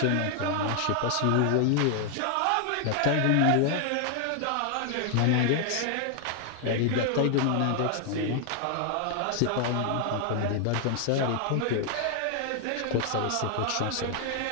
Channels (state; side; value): different; both; correlation 0.00